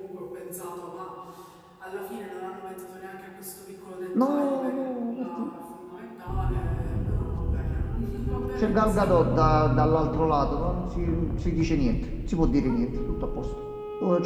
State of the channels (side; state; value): both; identical; correlation 1.00